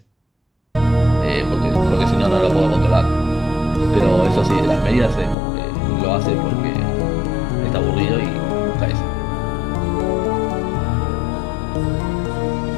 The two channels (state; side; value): drops out; right; at 5.4 s